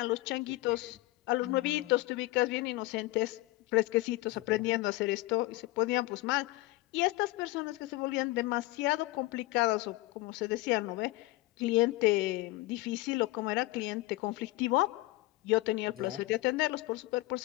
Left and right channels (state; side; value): quieter; right; 19.7 dB